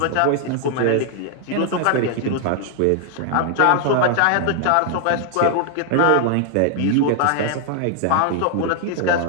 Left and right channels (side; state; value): both; different; correlation 0.00